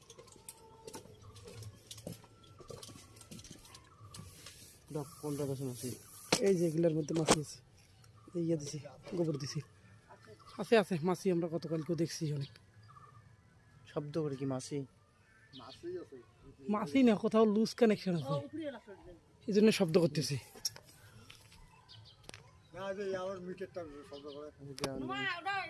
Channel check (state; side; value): identical; both; correlation 1.00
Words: কোনটা কাছে মাছি? এই যে এগুলোর মধ্যে মাছি আছে, এই ইয়ে দিছি, গোবর দিছি, আছে আছে মাছি। আমরা গতকালকেও দেখছি অনেক। শব্দ করে কি মাছি? মাছি না, কোথাও লুজ কানেকশন আছে, এই জন্য শব্দ করতেছি।